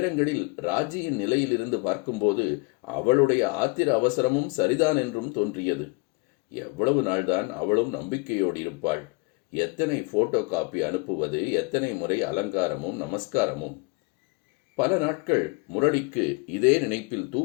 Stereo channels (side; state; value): right; quieter; 29.7 dB